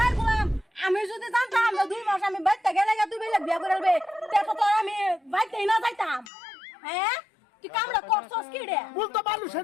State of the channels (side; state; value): right; drops out; at 6.3 s